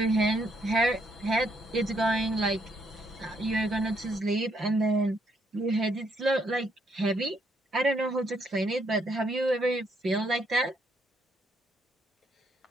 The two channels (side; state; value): both; normal; correlation 0.72